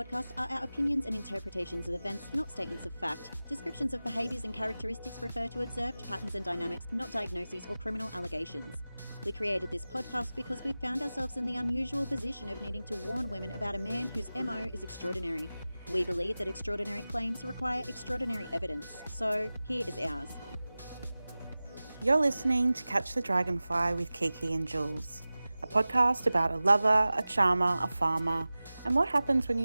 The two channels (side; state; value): both; inverted; correlation -0.97